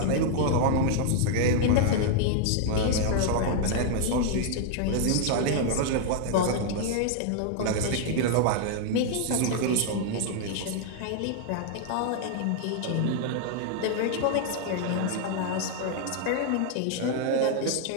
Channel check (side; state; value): both; different; correlation 0.00